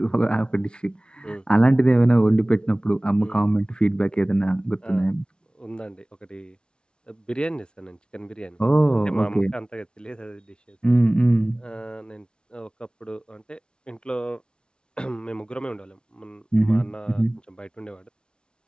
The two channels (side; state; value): right; late; 0.055 ms